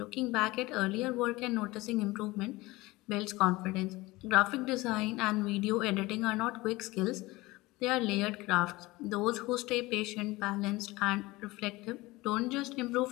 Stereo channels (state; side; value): quieter; right; 20.7 dB